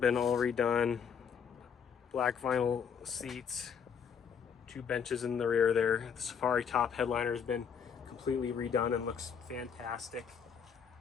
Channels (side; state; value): right; quieter; 7.0 dB